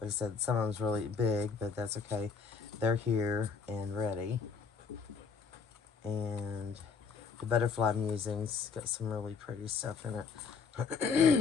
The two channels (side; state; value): right; quieter; 5.4 dB